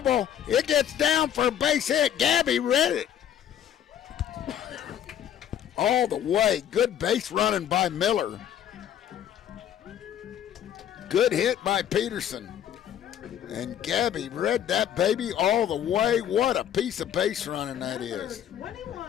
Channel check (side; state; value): right; quieter; 10.0 dB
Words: It gets down for a base hit. Gabby read it. All the way. Good base running by Miller. Good hit by Peterson. And Gabby read that baby all the way. What a piece of base running that is.